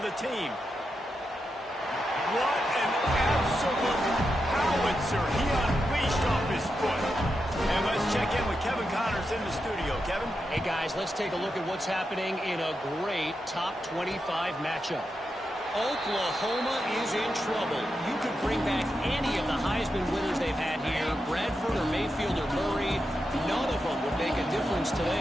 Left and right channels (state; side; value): normal; both; correlation 0.87